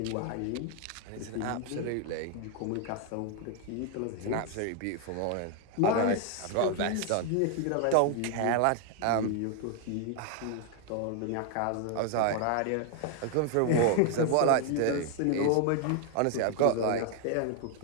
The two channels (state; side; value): different; both; correlation 0.00